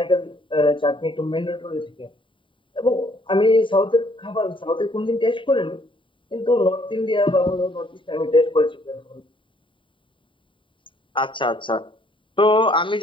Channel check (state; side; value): late; right; 0.25 ms